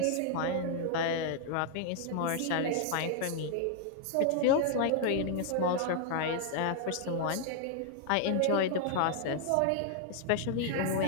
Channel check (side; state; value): both; different; correlation 0.00